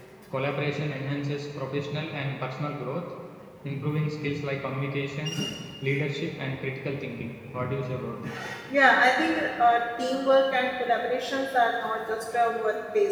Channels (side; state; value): both; identical; correlation 1.00